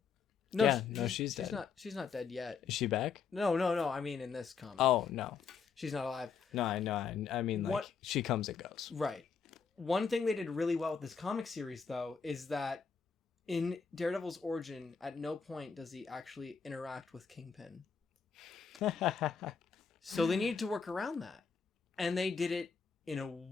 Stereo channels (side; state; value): right; quieter; 5.8 dB